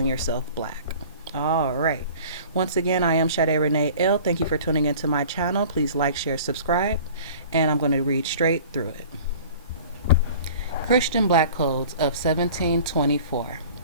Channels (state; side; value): inverted; both; correlation -0.45